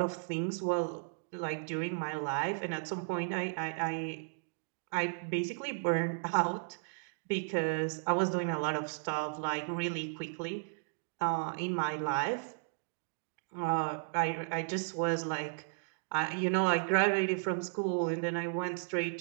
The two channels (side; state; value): left; silent; digital silence